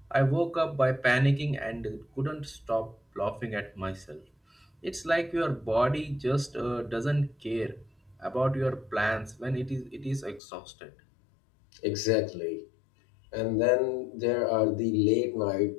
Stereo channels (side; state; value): right; drops out; at 10.4 s